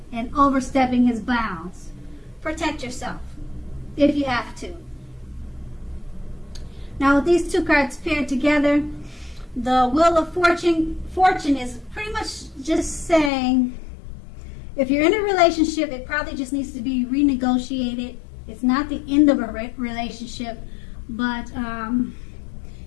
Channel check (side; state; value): right; drops out; at 13.3 s